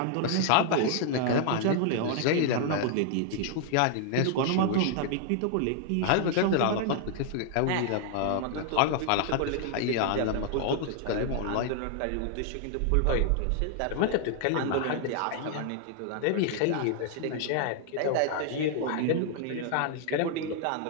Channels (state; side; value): different; both; correlation 0.00